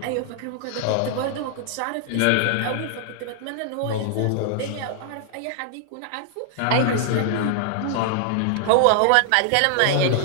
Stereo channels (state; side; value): different; both; correlation 0.00